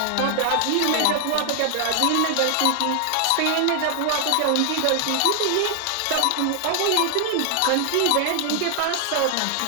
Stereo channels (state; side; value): different; both; correlation 0.00